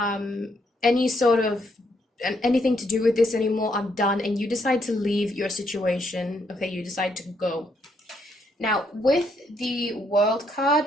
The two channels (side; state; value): both; normal; correlation 0.74